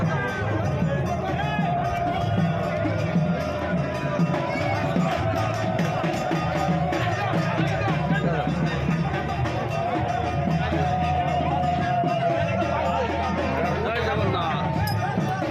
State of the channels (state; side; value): identical; both; correlation 1.00